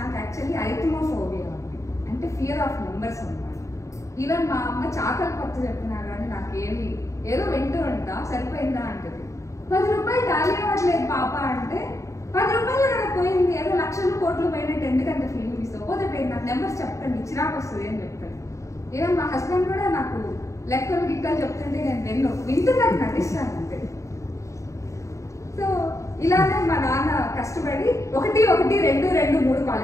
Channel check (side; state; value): right; late; 0.15 ms